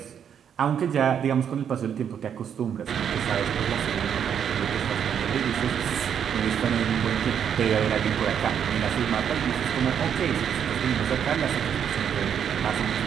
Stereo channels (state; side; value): quieter; left; 8.3 dB